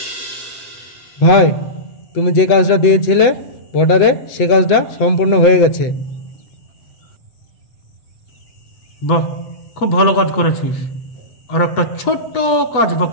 ভাই, তুমি যে কাজটা দিয়েছিলে বর্ডারে, সে কাজটা সম্পূর্ণ হয়ে গেছে। বাহ, খুব ভালো কাজ করেছিস। আর একটা ছোট্ট কাজ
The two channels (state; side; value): late; right; 7.9 ms